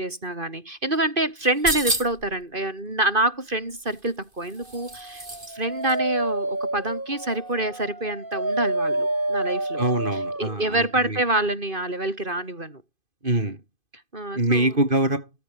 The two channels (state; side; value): late; left; 2.5 ms